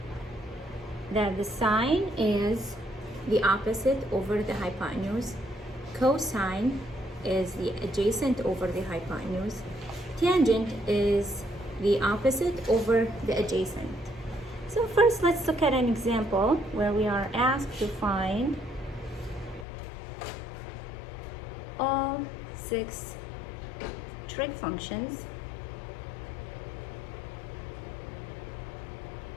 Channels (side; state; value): right; drops out; at 19.7 s